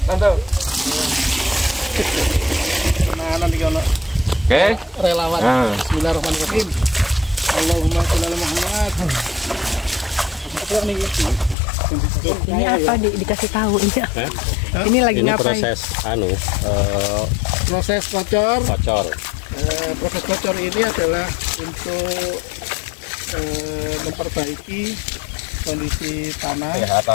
tante. Nah, nanti kalau Oke. relawan. Nah. Bismillahirrahmanirrahim. Allahumma sholli ala Muhammad. Apa nih? Ini apa dikasih tahu ini? Ini lagi Ini ngapain? proses Proses kocor. kocor. Proses kocor ini adalah untuk memperbaiki kondisi tanah, Ya,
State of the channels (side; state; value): right; drops out; at 11.6 s